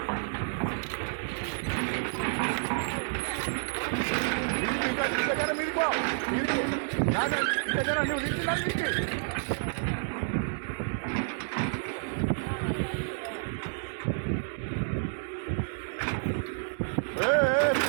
దగ్గర మీరుకో దగ్గర నువ్వు తీసుకున్నాను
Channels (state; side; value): silent; left; digital silence